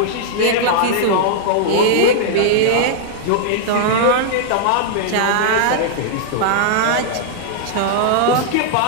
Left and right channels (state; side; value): different; both; correlation -0.01